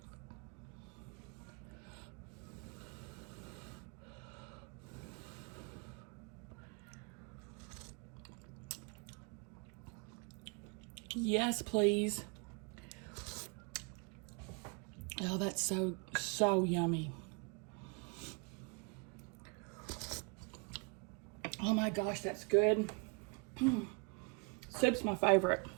Yes, please. Oh, that's so yummy. Oh my gosh, that's good. Soup's my favorite.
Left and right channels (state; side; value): quieter; left; 33.3 dB